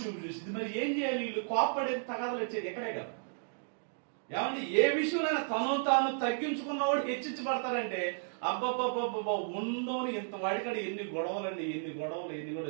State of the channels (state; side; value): silent; left; digital silence